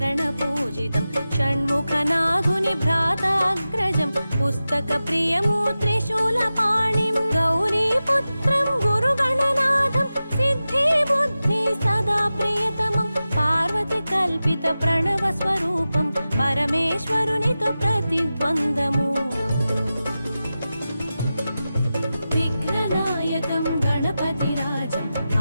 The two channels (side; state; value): both; inverted; correlation -0.94